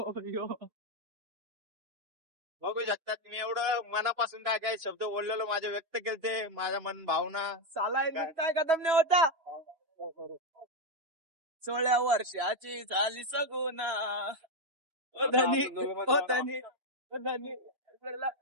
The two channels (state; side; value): late; left; 3.0 ms